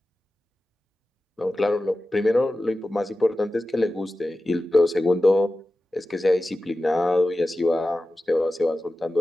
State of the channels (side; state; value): both; normal; correlation 0.94